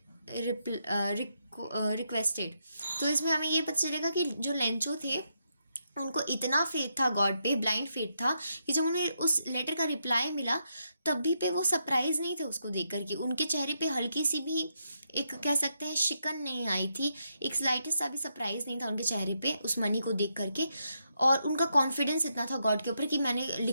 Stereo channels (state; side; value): inverted; both; correlation -0.81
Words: requested. तो इसमें हमें ये पता चलेगा कि जो Lencho थे उनको इतना फेथ था गॉड पे, ब्लाइंड फेथ था, कि जब उन्हें उस लेटर का रिप्लाई मिला तभी पे वो सरप्राइज नहीं थे उसको देख कर के. उनके चेहरे पे हल्की सी भी एक कह सकते हैं शिकन नहीं आई थी, एक स्लाइटेस्ट सा भी सरप्राइज नहीं था उनके चेहरे पे उस मनी को देख करके. और उनका कॉन्फिडेंस इतना था गॉड के ऊपर कि मैंने